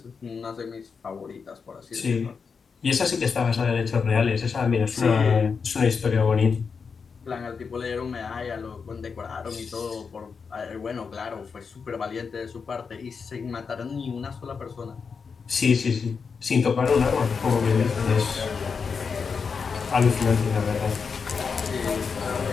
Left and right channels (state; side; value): quieter; right; 5.6 dB